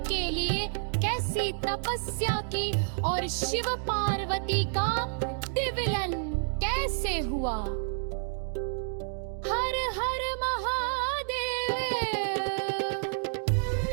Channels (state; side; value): silent; left; digital silence